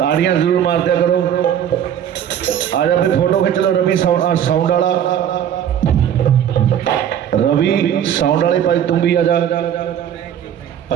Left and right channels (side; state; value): left; quieter; 9.7 dB